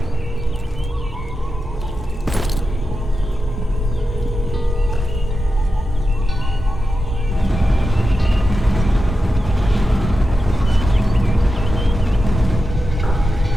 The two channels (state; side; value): normal; both; correlation 0.90